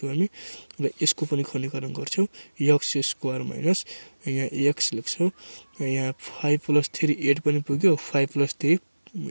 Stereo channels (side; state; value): both; inverted; correlation -1.00